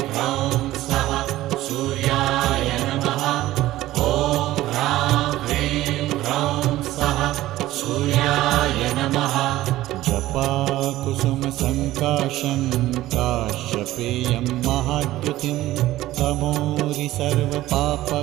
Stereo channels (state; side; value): quieter; left; 15.7 dB